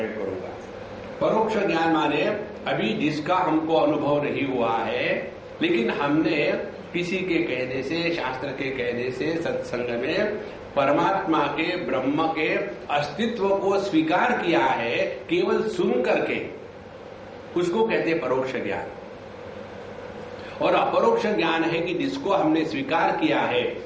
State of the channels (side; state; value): both; identical; correlation 1.00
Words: करूंगा। परोक्ष ज्ञान माने अभी जिसका हमको अनुभव नहीं हुआ है, लेकिन हमने किसी के कहने से, शास्त्र के कहने से, सत्संग में परमात्मा के, ब्रह्म के अस्तित्व को स्वीकार किया है, केवल सुन करके, उसको कहते हैं परोक्ष ज्ञान। और अपरोक्ष ज्ञान है कि जिसको हमने स्वीकार किया है,